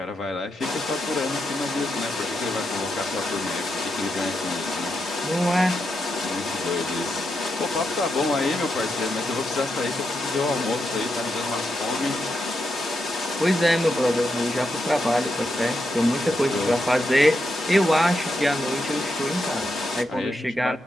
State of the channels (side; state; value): both; normal; correlation 0.84